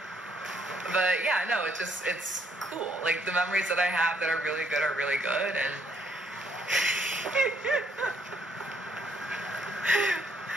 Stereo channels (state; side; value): normal; both; correlation 0.69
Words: But yeah, no, it's cool. Like the memories that I have that are really good, and